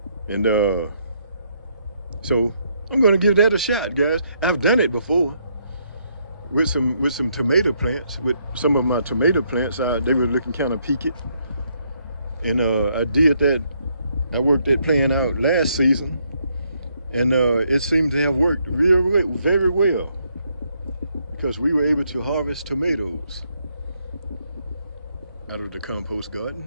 And so I'm gonna give that a shot, guys. I've done it before with some tomato plants. With some of my tomato plants, they were looking kind of peaked. And I did that. I worked that plan out last season, and it seemed to have worked very well, because we were able to harvest tomatoes out of the compost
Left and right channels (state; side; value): inverted; both; correlation -0.73